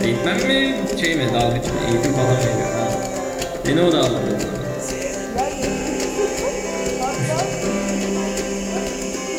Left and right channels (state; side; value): identical; both; correlation 1.00